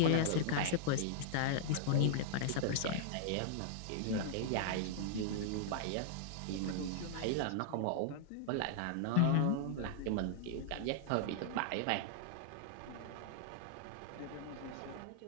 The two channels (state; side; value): different; both; correlation -0.01